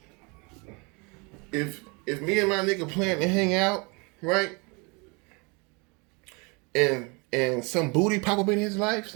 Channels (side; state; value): left; quieter; 30.0 dB